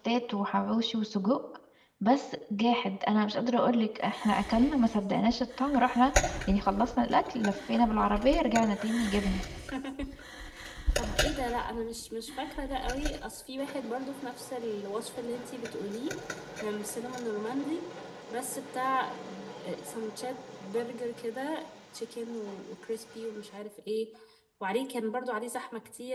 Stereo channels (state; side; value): identical; both; correlation 1.00